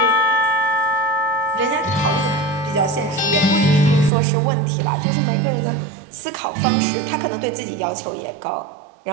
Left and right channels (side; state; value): left; drops out; at 4.1 s